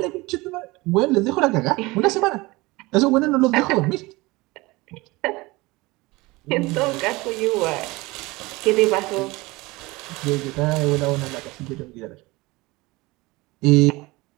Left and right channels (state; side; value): quieter; left; 22.3 dB